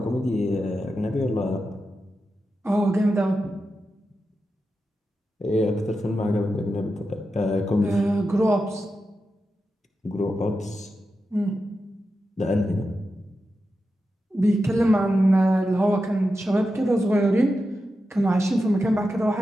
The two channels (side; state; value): both; normal; correlation 0.90